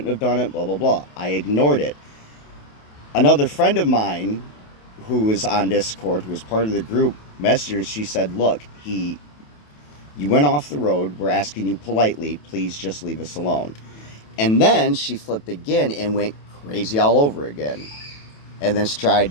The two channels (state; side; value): late; right; 28 ms